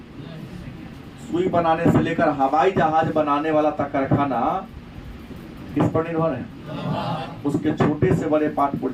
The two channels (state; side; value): identical; both; correlation 1.00